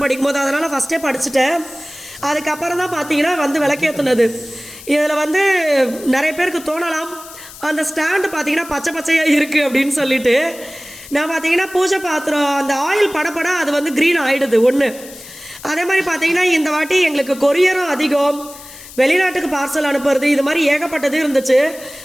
படிக்கும்போது. அதனால் ஃபஸ்ட்டே படிச்சுட்டேன். அதுக்கப்புறம் தான் பார்த்தீங்கன்னா வந்து விளக்கேற்றுனது. இதில் வந்து நிறைய பேருக்கு தோணலாம் அந்த ஸ்டாண்டு பார்த்தீங்கன்னா பச்சை பச்சையாக இருக்குது அப்படின்னு சொல்லிட்டு. நான் பார்த்தீங்கன்னா பூஜை பாத்திரம் அந்த ஆயில் படப்பட அது வந்து க்ரீன் ஆகிடுது ஒன்று. அதே மாதிரி பார்த்தீங்கன்னா இந்த வாட்டி எங்களுக்கு கொரியரும் அதிகம், வெளிநாட்டுக்கு பார்சல் அனுப்புறது, இது மாதிரி ஏகப்பட்டது இருந்துச்சு.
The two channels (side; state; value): left; noise; hiss, 17 dB below the sound